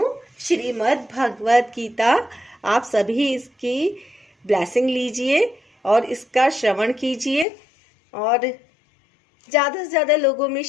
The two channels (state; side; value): drops out; right; at 7.5 s